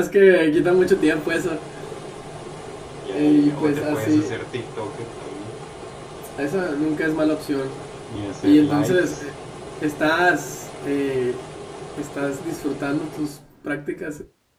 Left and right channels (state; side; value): identical; both; correlation 1.00